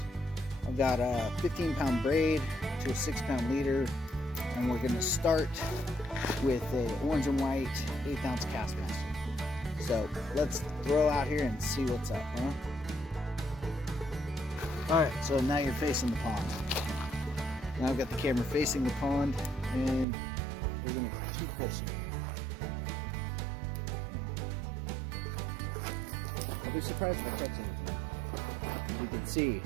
I've got a 15-pound braid to a 6-pound leader, and we're gonna start with a orange and white 1/8 ounce cast master. So let's throw out here and see what's up, huh? All right, so now you're facing the pond. Now I've got the camera facing the pond, and we're gonna keep fishing. So, I'll be surprised if I catch anything. As you can see,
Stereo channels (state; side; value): drops out; left; at 20.1 s